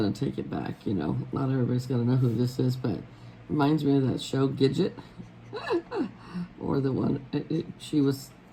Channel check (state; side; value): identical; both; correlation 1.00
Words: to take it back, you know. Not everybody's going to know who this is, but it reminds me of that show, Gidget. Or the one,